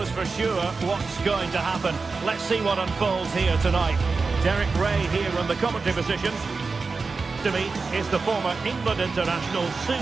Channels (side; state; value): left; quieter; 4.3 dB